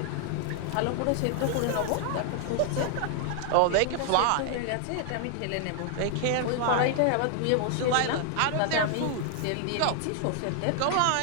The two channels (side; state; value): both; different; correlation 0.00